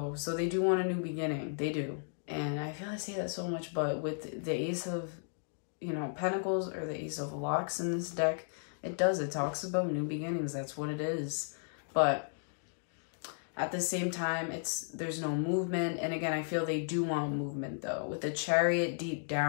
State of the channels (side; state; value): right; silent; digital silence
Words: So they do want a new beginning. They do. And I feel I say that so much, but with the Ace of, you know, Pentacles or the Ace of Locks in this deck, it talks about new beginnings. That's what it is. But at the same time, there's no movement. And again, I feel they do want movement though. With the Chariot deep